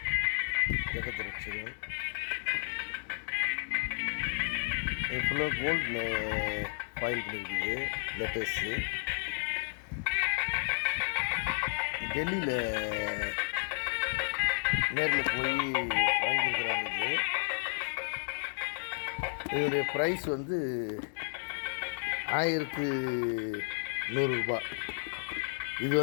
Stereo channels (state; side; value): silent; right; digital silence